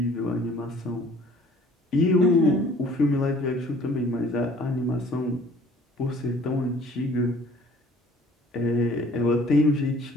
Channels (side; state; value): both; normal; correlation 0.53